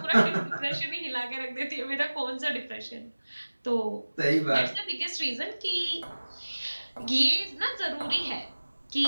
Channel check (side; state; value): both; inverted; correlation -1.00